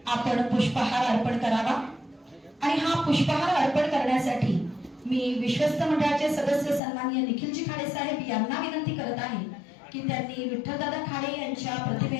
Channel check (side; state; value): right; drops out; at 6.8 s